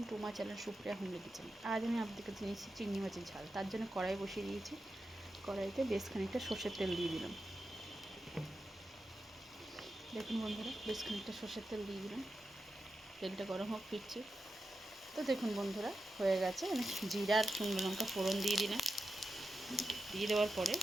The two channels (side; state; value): both; normal; correlation 0.90